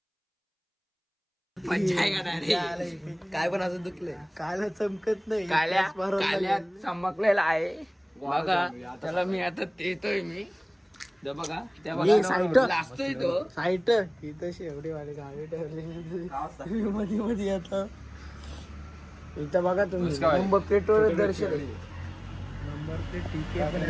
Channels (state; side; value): identical; both; correlation 1.00